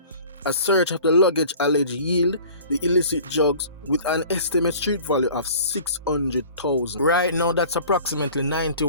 A search of the luggage alleged yield the illicit drugs with an estimated street value of $600,000. Right now, that's approximately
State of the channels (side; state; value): both; inverted; correlation -0.45